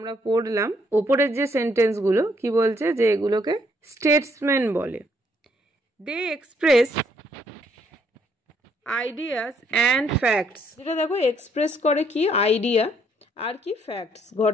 পড়লাম ওপরের যে সেন্টেন্সগুলো কি বলছে যে এগুলোকে স্টেটসমেন্ট বলে। They express ideas and facts. যেটা দেখো এক্সপ্রেস করে কি আইডিয়া আর কি ফ্যাক্টস,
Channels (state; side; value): normal; both; correlation 0.69